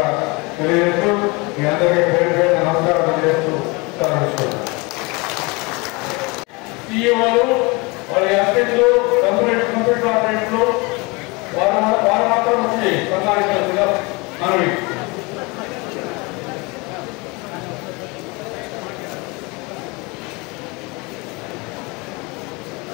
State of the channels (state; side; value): quieter; right; 26.7 dB